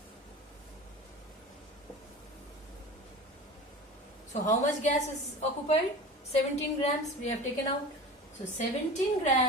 So how much gas is occupied? 17 grams we have taken out. So 17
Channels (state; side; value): normal; both; correlation 0.34